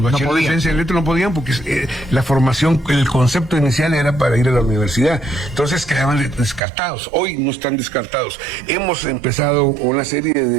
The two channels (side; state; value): left; drops out; at 6.6 s